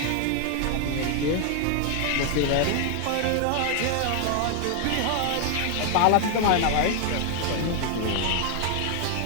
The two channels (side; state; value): both; different; correlation 0.00